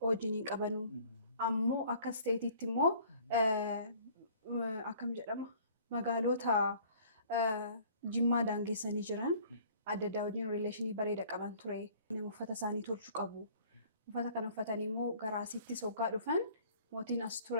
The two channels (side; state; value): both; inverted; correlation -0.53